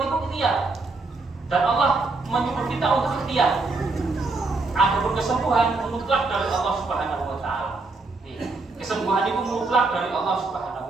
itu ikhtiar, dan Allah menyuruh kita untuk ikhtiar. Adapun kesembuhan mutlak dari Allah Subhanahu wa taala. Kesembuhan itu mutlak dari Allah Subhanahu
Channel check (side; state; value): left; quieter; 3.6 dB